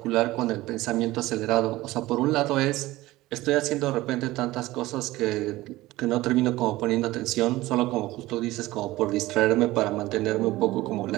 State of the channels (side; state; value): left; quieter; 18.0 dB